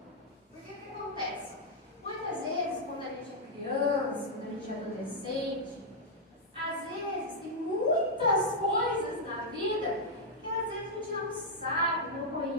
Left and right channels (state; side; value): normal; both; correlation -0.05